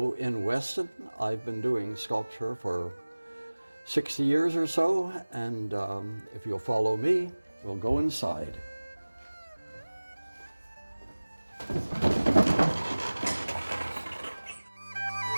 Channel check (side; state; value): both; inverted; correlation -1.00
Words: in Weston. I've been doing sculpture for 60 years or so, and if you'll follow me, we'll go inside.